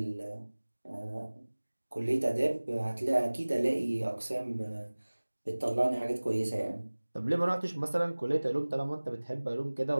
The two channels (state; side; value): inverted; both; correlation -1.00